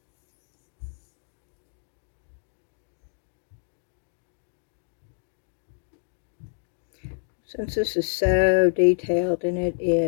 Since this is so detailed, and it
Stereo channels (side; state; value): right; silent; digital silence